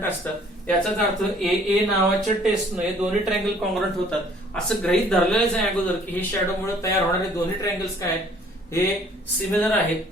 असतात. याचाच अर्थ ए नावाच्या टेस्टनं हे दोन्ही ट्रायंगल कॉन्ग्रंट होतात असं गृहीत धरलेलंच आहे अगोदर की हे शॅडोमुळे तयार होणारे दोन्ही ट्रायंगल्स काय आहेत हे सिमिलर आहेत.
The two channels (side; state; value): both; normal; correlation 0.57